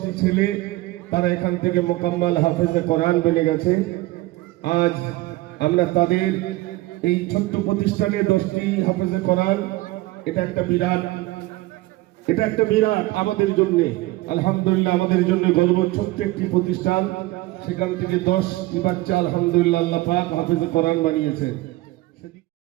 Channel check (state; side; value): quieter; left; 19.1 dB